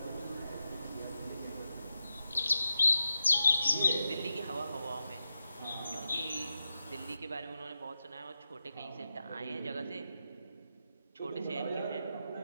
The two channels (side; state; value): both; inverted; correlation -0.89